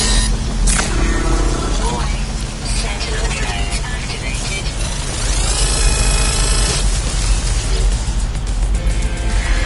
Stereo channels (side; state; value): both; identical; correlation 1.00